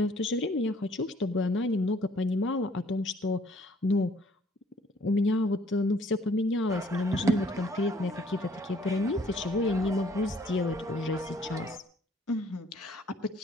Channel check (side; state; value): both; normal; correlation 0.61